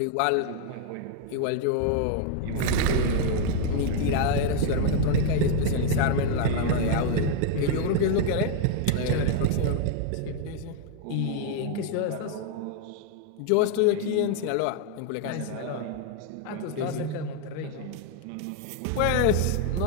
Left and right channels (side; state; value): both; different; correlation 0.00